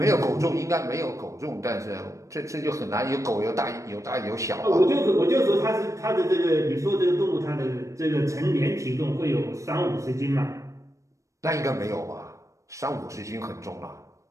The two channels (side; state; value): left; late; 0.15 ms